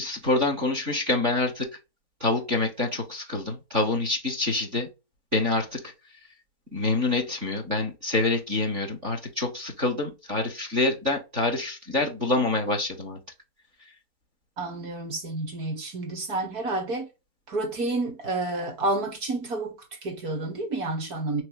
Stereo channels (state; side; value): late; left; 4.6 ms